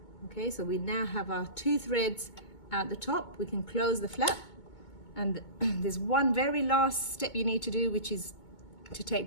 Okay, so we now have our 2 threads out the top. We can close the flap, and there's one very last step you need to do, which is to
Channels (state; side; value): late; right; 2.2 ms